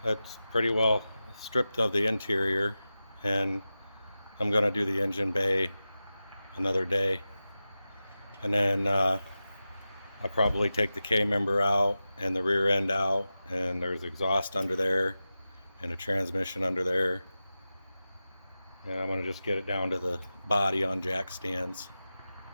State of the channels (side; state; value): both; inverted; correlation -0.94